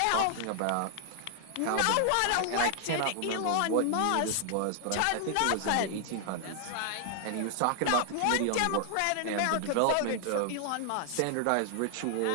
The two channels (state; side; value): different; both; correlation 0.00